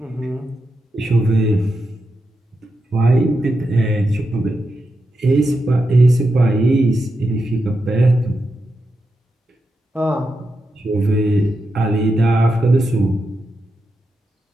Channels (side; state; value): both; normal; correlation 0.87